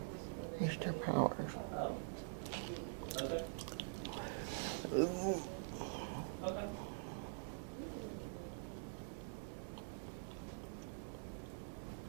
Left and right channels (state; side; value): silent; left; digital silence